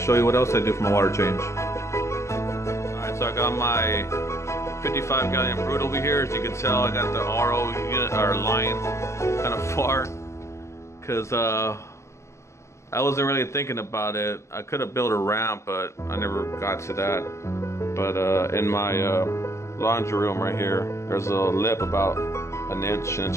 you what else I do for my water change. Alright, so I got my 55 gallon Brute over here. As you can tell, I got the RO unit or line kind of far, because I wasn't really thinking about it. I could have built a ramp, but I never got to that. But in my laundry room right here, there's a lip about an inch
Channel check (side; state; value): right; late; 0.14 ms